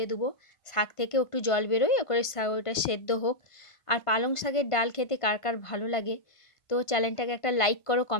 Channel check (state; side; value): late; right; 1.5 ms